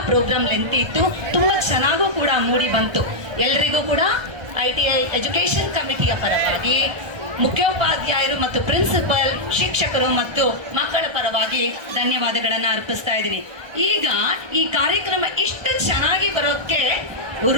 ಪ್ರೋಗ್ರಾಮ್ ಲೆಂತಿ ಇತ್ತು, ತುಂಬಾ ಚೆನ್ನಾಗೂ ಕೂಡ ಮೂಡಿ ಬಂತು. ಎಲ್ರಿಗೂ ಕೂಡ ITI ಎಜುಕೇಶನ್ ಕಮಿಟಿಯ ಪರವಾಗಿ, ಮುಖ್ಯೋಪಾಧ್ಯಾಯರು ಮತ್ತು ಪ್ರಿನ್ಸಿಪಲ್, ಶಿಕ್ಷಕರು ಮತ್ತು ಮಕ್ಕಳ ಪರವಾಗಿ ಧನ್ಯವಾದಗಳನ್ನ ಅರ್ಪಿಸ್ತಾ ಇದ್ದೀನಿ. ಈಗ ಈ ಕಾರ್ಯಕ್ರಮ ಇಷ್ಟು ಚೆನ್ನಾಗಿ ಬರೋಕ್ಕೆ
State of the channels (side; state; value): left; late; 1.3 ms